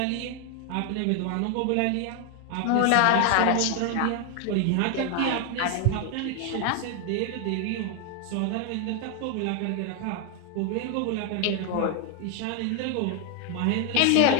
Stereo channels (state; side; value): different; both; correlation 0.01